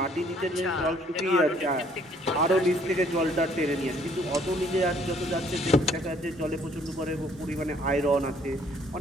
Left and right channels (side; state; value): both; normal; correlation 0.62